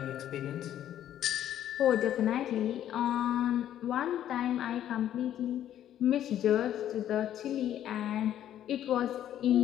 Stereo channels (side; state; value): right; quieter; 11.2 dB